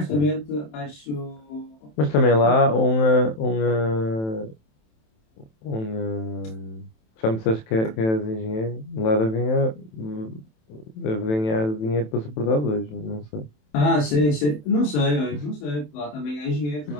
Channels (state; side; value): late; right; 27 ms